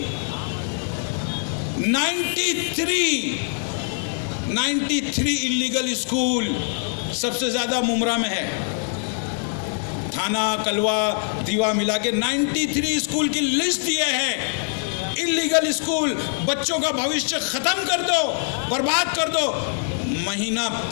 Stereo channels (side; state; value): right; silent; 63 dB below the other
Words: 93 इल्लीगल स्कूल सबसे ज्यादा मुमरा में है। थाना, कलवा, दीवा मिला के 93 स्कूल की लिस्ट दिए हैं। इल्लीगल स्कूल, बच्चों का भविष्य खत्म कर दो, बर्बाद कर दो। महीना